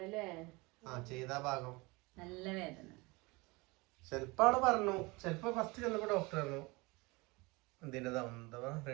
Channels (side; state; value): left; quieter; 24.9 dB